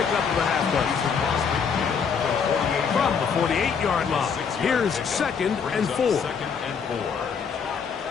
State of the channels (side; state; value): right; quieter; 6.3 dB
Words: of the halfback. From the 48-yard line, here's 2nd and 4.